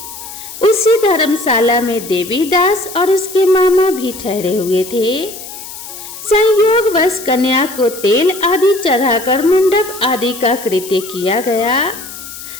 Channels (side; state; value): left; noise; hiss, 13 dB below the sound